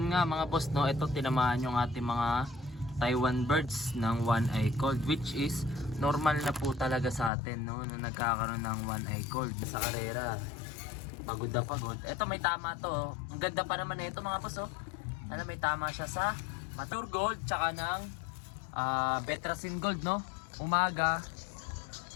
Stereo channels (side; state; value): right; drops out; at 7.3 s